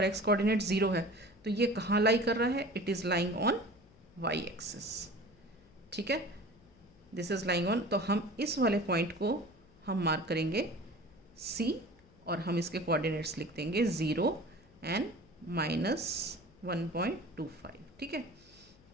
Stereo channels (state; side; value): noise; left; hum, 27 dB below the sound